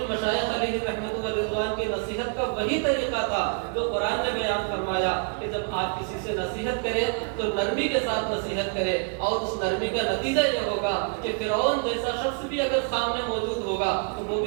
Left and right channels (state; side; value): quieter; left; 37.1 dB